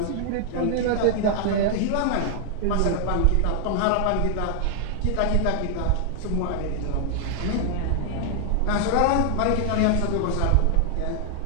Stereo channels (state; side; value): different; both; correlation 0.00